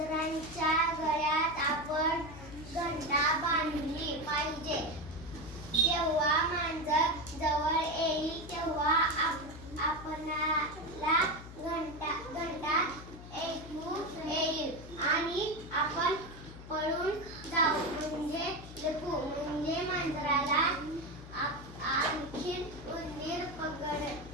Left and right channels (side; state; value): left; noise; hum, 14 dB below the sound